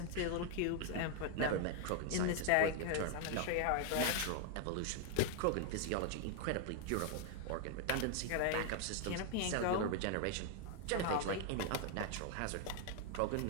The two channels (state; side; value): different; both; correlation 0.01